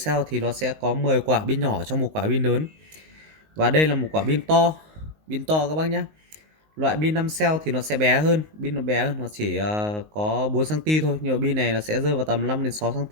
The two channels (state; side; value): late; left; 19 ms